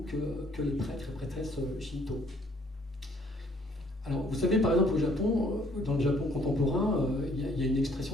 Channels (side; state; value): both; normal; correlation 0.62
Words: que les prêtres et prêtresses Shinto. Alors, vous savez, par exemple, au Japon, dans le Japon contemporain, il y a une